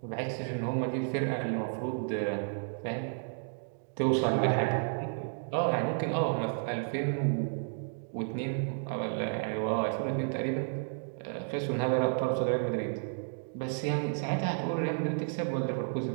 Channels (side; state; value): left; silent; digital silence